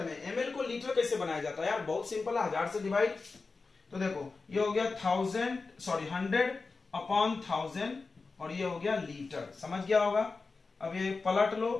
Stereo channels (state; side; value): quieter; right; 4.1 dB